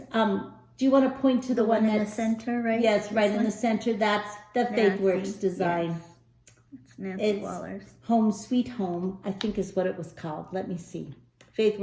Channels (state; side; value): identical; both; correlation 1.00